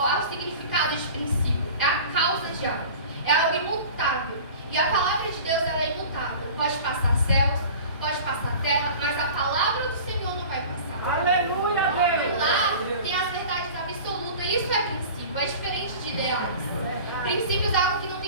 o significado de princípio? É a causa de algo. É algo imutável. E a palavra de Deus, ela é imutável. Pode passar céus, pode passar terra, mas a palavra do Senhor não vai passar. Aleluia, Deus. E lá tem as verdades absolutas. Isso é princípio, é diferente de ideais. Princípios é algo que não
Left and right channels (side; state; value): both; inverted; correlation -0.39